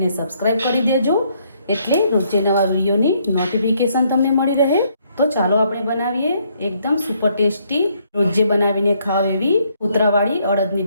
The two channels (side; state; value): both; inverted; correlation -0.70